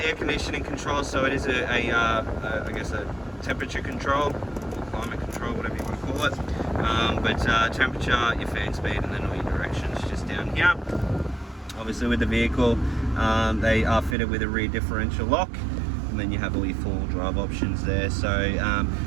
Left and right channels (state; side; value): drops out; left; at 14.2 s